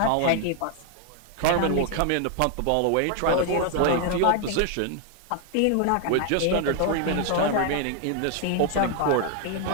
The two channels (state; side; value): different; both; correlation 0.00